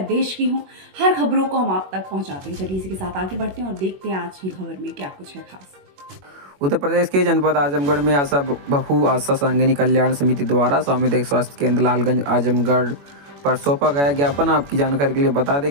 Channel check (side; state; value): left; late; 21 ms